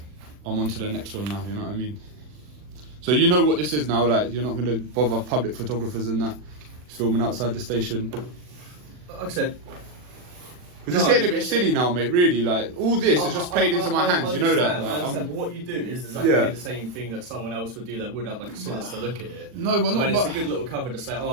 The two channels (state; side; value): late; left; 40 ms